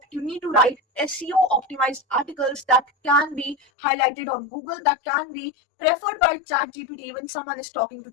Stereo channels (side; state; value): right; drops out; at 3.6 s